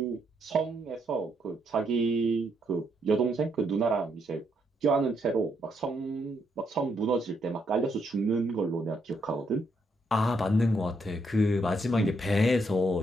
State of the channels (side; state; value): both; normal; correlation 0.76